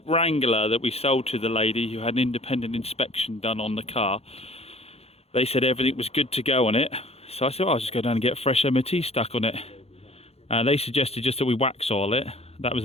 Wrangler that we sold to the lady who had an independent inspection done on the car. They said everything was good to go on it. So I said, well, I'll just go down and get fresh MOT stuck on it. They suggested just that we wax oil it. That was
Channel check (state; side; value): late; right; 0.29 ms